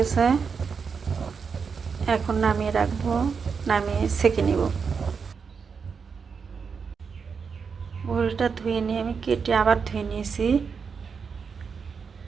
এখন নামিয়ে রাখবো। নামিয়ে সেঁকে নিব। ভুড়িটা ধুয়ে নিয়ে আমি কেটে আবার ধুয়ে নিয়েছি।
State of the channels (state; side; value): quieter; left; 5.8 dB